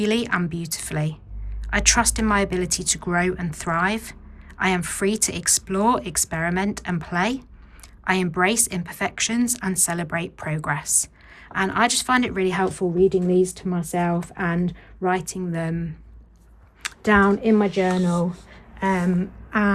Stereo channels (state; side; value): identical; both; correlation 1.00